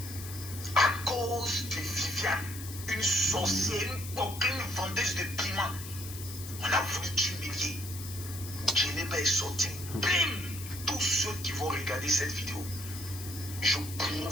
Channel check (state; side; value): noise; left; hiss, 11 dB below the sound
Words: À cause de Viviane, une sorcière, une vendeuse de piment, on a voulu t'humilier. Djeneba est sorti. Bim! Tous ceux qui vont regarder cette vidéo, je